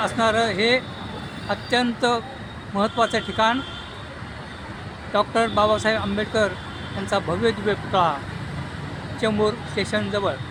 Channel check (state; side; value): identical; both; correlation 1.00